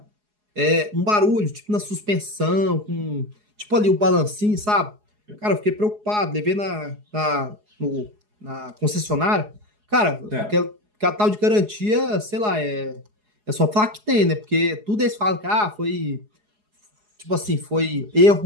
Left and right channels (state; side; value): late; left; 4.8 ms